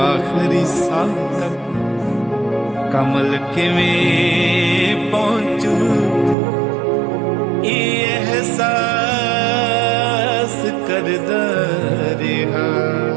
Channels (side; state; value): left; drops out; at 6.4 s